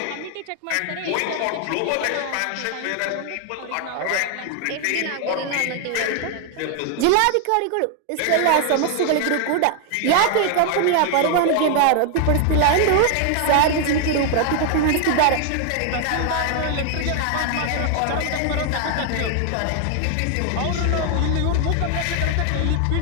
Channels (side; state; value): both; different; correlation 0.00